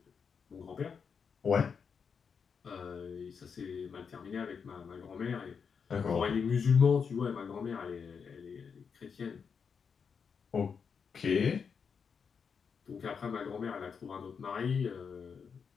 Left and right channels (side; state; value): right; quieter; 6.2 dB